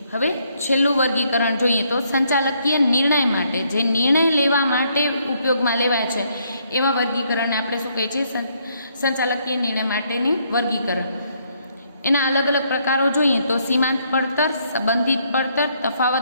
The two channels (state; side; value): inverted; both; correlation -0.71